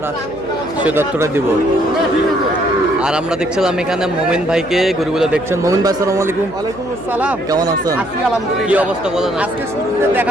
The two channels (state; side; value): noise; left; hum, 17 dB below the sound